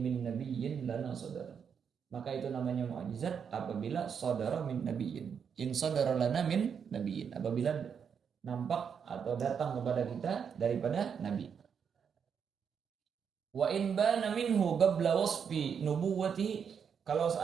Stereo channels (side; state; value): left; quieter; 7.1 dB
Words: min nabiyyin lana sadar. Maka itu namanya mukjizat apabila saudara min nabiyyin. In saudara lana min nabiyyin. Apabila nampak atau datang kepada kita daripada nabi. Wa in bana minhu qabla wasfi nubuwwati. Kalau